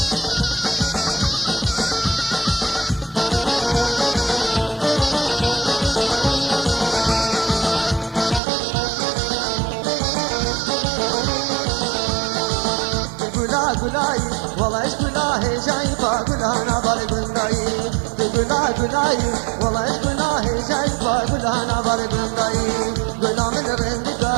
گلای والله گلاه جای با گلانا بارگندایی گلا گلای والله گلاه جای با گلانا بارگندایی گلا من رندگا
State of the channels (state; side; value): drops out; left; at 8.4 s